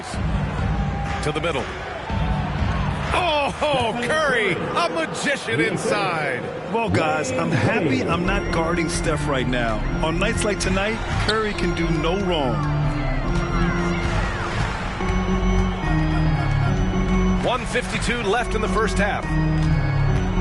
to the middle. Oh, Curry, a magician inside. Well, guys, I'm happy I'm not guarding Steph right now. On nights like tonight, Curry can do no wrong. 1:52 left in the first half.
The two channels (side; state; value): both; identical; correlation 1.00